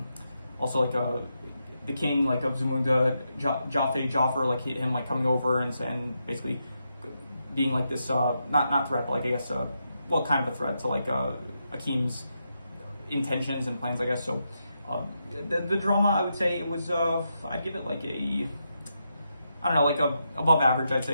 also like the king like of Zamunda, Jafar, like him like coming over and basically being like this not threat, but like I guess well, kind of a threat to like Akeem's intentions and plans, I guess. So the drama, I would say it was I'd give it like a, I don't know, like a above average. I'd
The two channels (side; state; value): both; inverted; correlation -0.84